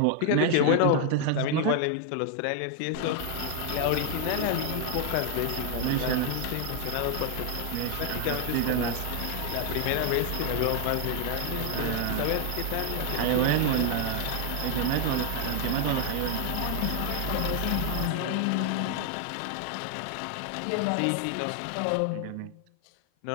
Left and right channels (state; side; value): different; both; correlation 0.00